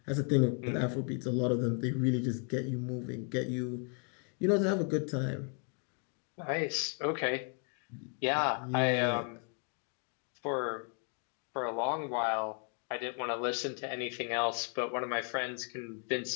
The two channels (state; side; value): quieter; right; 39.8 dB